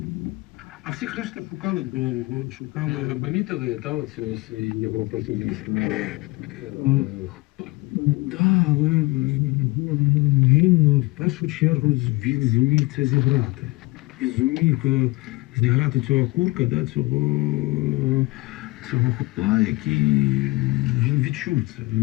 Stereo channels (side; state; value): right; quieter; 23.2 dB